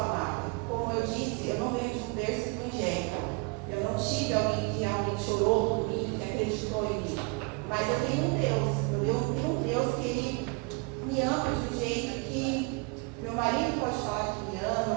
Como eu disse, eu não venho de um berço evangélico. Eu não tive alguém que realmente orou por mim, que acreditou em mim. Mas eu tenho um Deus. Eu tenho um Deus que Ele me ama de um jeito que meu marido pode falar que me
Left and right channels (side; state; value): left; quieter; 29.2 dB